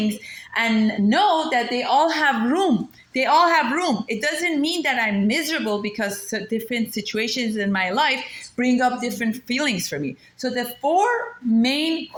and know that they all have room, it doesn't mean that I'm miserable because different situations in my life bring up different feelings for me. So the four main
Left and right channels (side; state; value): both; identical; correlation 1.00